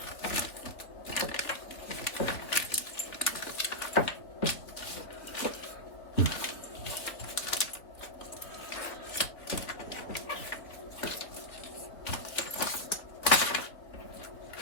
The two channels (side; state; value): right; late; 3.2 ms